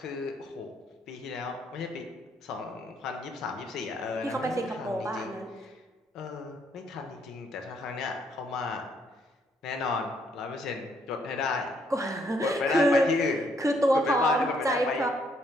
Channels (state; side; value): normal; both; correlation 0.70